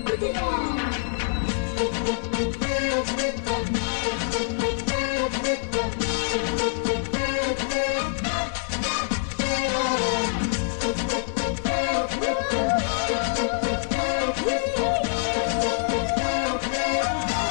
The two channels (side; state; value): right; silent; 61 dB below the other